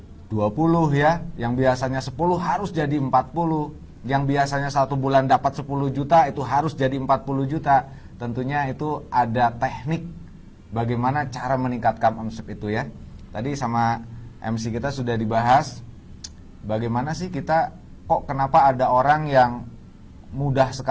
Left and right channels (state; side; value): identical; both; correlation 1.00